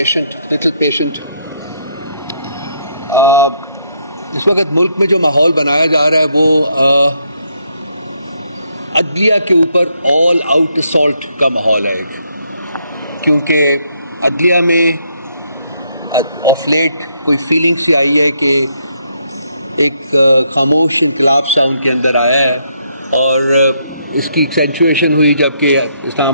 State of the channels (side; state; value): both; inverted; correlation -0.73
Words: little patient. اس وقت ملک میں جو ماحول بنایا جا رہا ہے وہ عدلیہ کے اوپر آل آؤٹ اسالٹ کا ماحول ہے، کیونکہ عدلیہ میں آف لیٹ کوئی فیلنگ سی آئی ہے کہ ایک خاموش انقلاب سا ان کے اندر آیا ہے، اور اس کی ایکسینچویشن ہوئی جب کہ اسلام